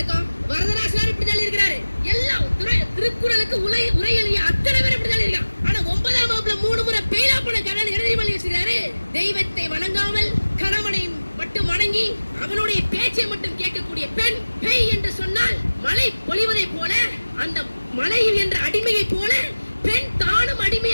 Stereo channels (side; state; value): both; inverted; correlation -1.00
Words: வரதராசனார் இப்படிதான் இருக்கிறாரு. எல்லாம் திருக்குறளுக்கு உரை எழுதிய அத்தனை பேர் இப்படிதான் இருக்கான். ஆனா 9ஆம் வகுப்புல 3 முறை பெய்யா போன கணவன் எழுதி வச்சிருக்காரு. தெய்வத்தை வணங்காமல் கணவனை மட்டும் வணங்கி அவனுடைய பேச்சை மட்டும் கேட்கக்கூடிய பெண் பெய் என்று சொன்னால் மழை பொழிவதை போல, அந்த மழையில் என்ற அடிமையை போல பெண் தானும்